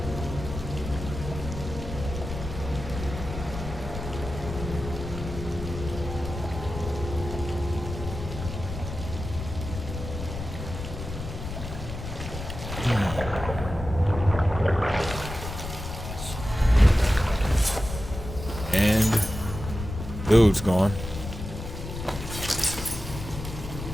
And dude's gone.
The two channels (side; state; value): left; noise; rumble, 8 dB below the sound